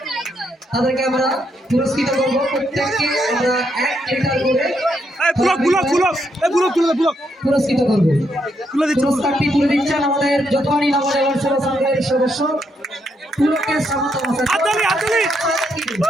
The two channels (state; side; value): normal; both; correlation 0.77